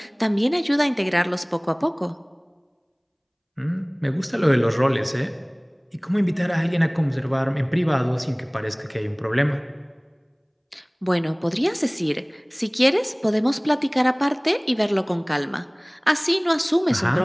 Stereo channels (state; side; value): identical; both; correlation 1.00